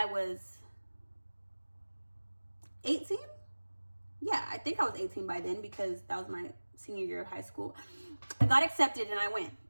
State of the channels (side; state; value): both; inverted; correlation -1.00